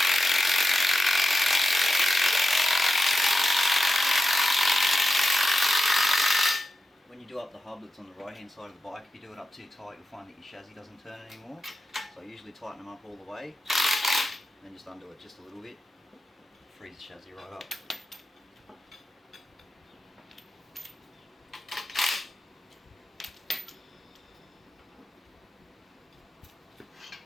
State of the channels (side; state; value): both; normal; correlation 0.89